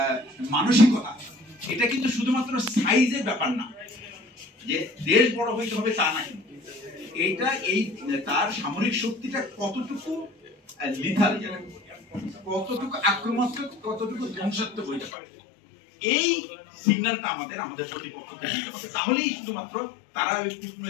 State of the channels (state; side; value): drops out; right; at 15.1 s